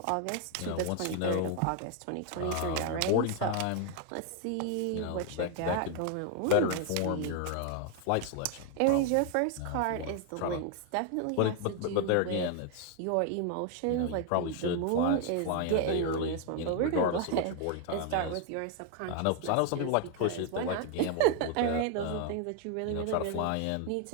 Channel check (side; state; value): both; different; correlation 0.01